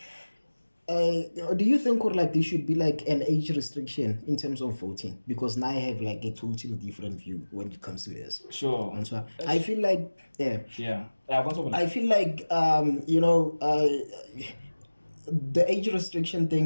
do you think like there should be like an age restriction in terms of voting? Because now I have like a totally different view when it comes to this. Sure. And so I feel like I feel like the age restriction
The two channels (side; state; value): both; inverted; correlation -1.00